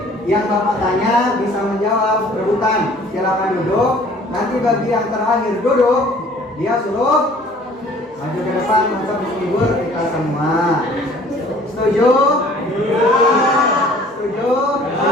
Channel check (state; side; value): normal; both; correlation 0.53